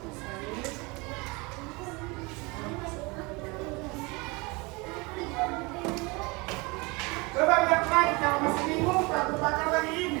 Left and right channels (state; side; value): quieter; left; 26.4 dB